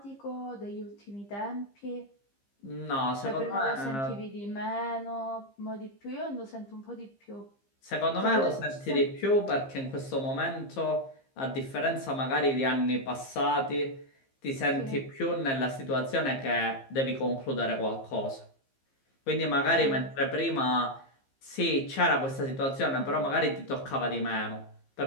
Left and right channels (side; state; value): right; late; 15 ms